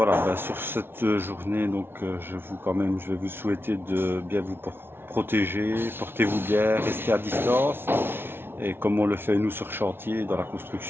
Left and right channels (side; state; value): left; late; 0.11 ms